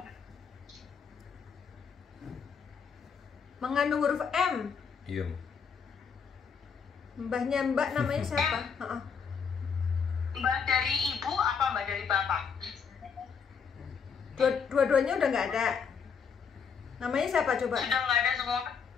Mengandung huruf M. Iya. Mbahnya Mbak namanya siapa? Heeh. Mbak dari ibu apa Mbak dari bapak? Dua-duanya udah nggak ada. Namanya siapa coba? Sudah nggak ada semua.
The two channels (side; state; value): right; quieter; 6.3 dB